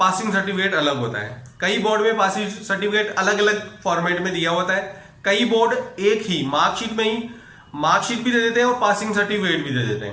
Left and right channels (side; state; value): both; identical; correlation 1.00